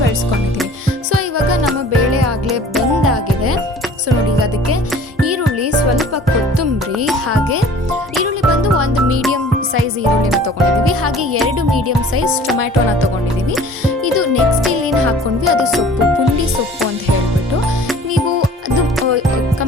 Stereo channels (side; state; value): both; normal; correlation 0.48